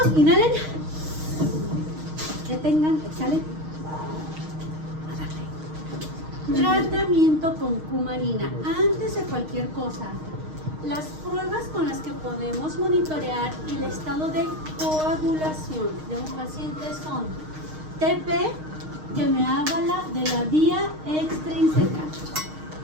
Inhalen. Detengan, exhalen. A darle. Tratamiento con cumarina. Antes de cualquier cosa, las pruebas con las que podemos monitorear el estado de coagulación de un paciente son TP, que me habla de la vía extrínseca,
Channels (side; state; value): left; late; 6.5 ms